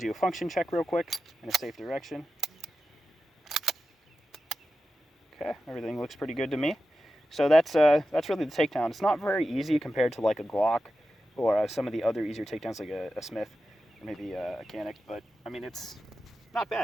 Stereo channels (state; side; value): normal; both; correlation 0.92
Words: a function check real quick in a safe direction. Okay, everything looks pretty good to me. So that's really the takedown. It's not very easy compared to like a Glock or some of the other easier takedowns like a Smith or maybe a Canic, but I mean, it's not